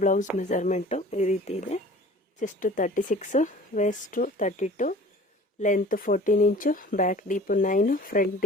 ಬ್ಲೌಸ್ ಮೆಜರ್ಮೆಂಟು ಈ ರೀತಿ ಇದೆ. Chest 36, waist 32, length 14 inch, back deep 9, front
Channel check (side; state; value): both; normal; correlation 0.46